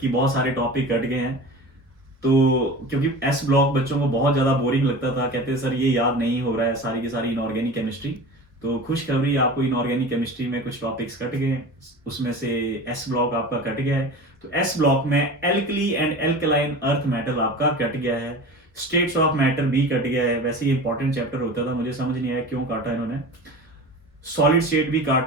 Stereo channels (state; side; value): normal; both; correlation 0.34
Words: बहुत सारे टॉपिक कट गए हैं। तो क्योंकि एस ब्लॉक बच्चों को बहुत ज्यादा बोरिंग लगता था, कहते हैं सर ये याद नहीं हो रहा है, सारी की सारी इनऑर्गेनिक केमिस्ट्री। तो खुशखबरी, आपको इनऑर्गेनिक केमिस्ट्री में कुछ टॉपिक्स कट गए, उसमें से एस ब्लॉक आपका कट गया है। तो एस ब्लॉक में alkali and alkaline earth metal आपका कट गया है, स्टेट्स ऑफ मैटर भी कट गया है। वैसे ही इंपॉर्टेंट चैप्टर होता था, मुझे समझ नहीं आया क्यों काटा इन्होंने। सॉलिड स्टेट भी